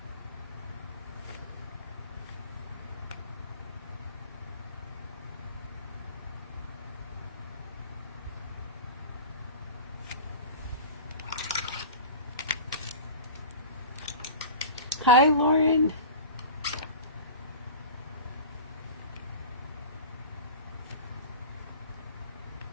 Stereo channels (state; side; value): inverted; both; correlation -0.34